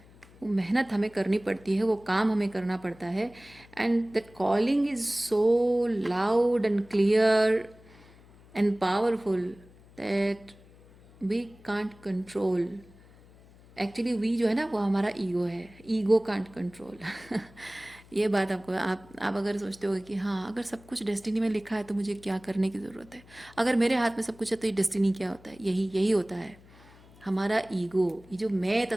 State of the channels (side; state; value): left; noise; hum, 24 dB below the sound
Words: वो मेहनत हमें करनी पड़ती है, वो काम हमें करना पड़ता है। And that calling is so loud and clear and powerful that we can't control. Actually we जो है ना वो हमारा ईगो है, ईगो कांट कंट्रोल। ये बात आपको, आप अगर सोचते हो कि हाँ अगर सब कुछ डेस्टिनी में लिखा है तो मुझे क्या करने की ज़रूरत है, अगर मेरे हाथ में सब कुछ है तो ये डेस्टिनी क्या होता है, यही होता है हमारा ईगो। ये जो मैं